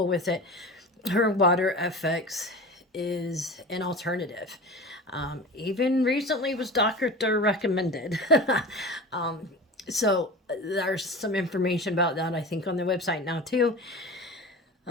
with it, her Water FX is an alternative. Even recently was doctor recommended. So there's some information about that, I think, on the website now too.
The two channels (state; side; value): normal; both; correlation 0.33